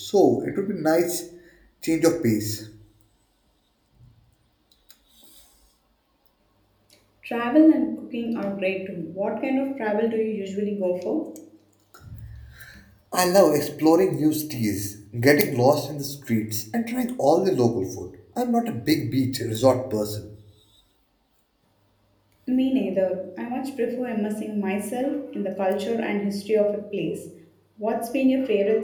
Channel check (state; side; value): identical; both; correlation 1.00